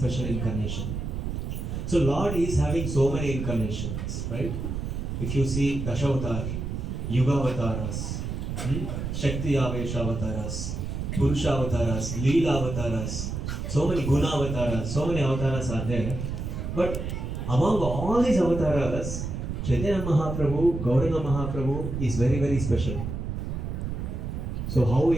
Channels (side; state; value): right; noise; rumble, 4 dB below the sound